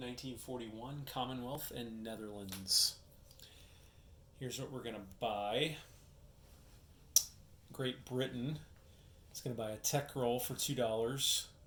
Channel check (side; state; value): both; identical; correlation 1.00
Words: Commonwealth and Netherlands. Here's what we're going to buy. Great Britain is going to buy a tech roll for $2,